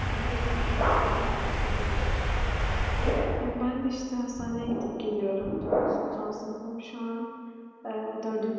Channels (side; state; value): both; identical; correlation 1.00